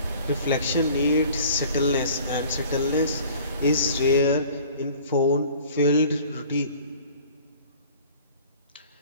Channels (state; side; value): inverted; both; correlation -0.49